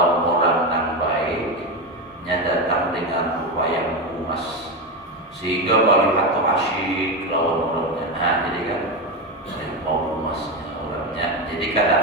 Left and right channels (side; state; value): both; normal; correlation 0.14